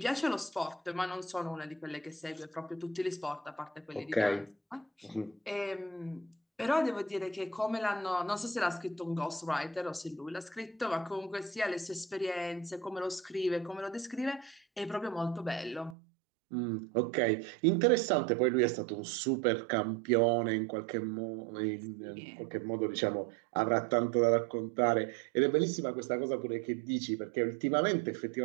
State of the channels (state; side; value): drops out; left; at 16.0 s